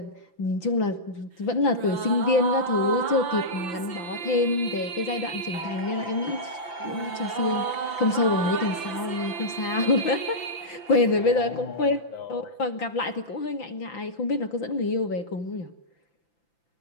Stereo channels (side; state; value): right; late; 5.9 ms